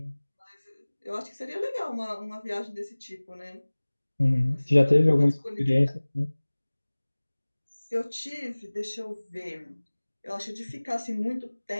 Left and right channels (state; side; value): inverted; both; correlation -1.00